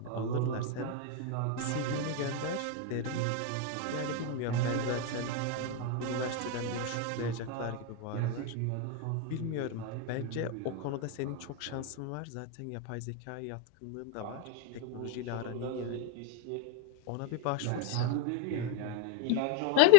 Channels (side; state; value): both; different; correlation 0.01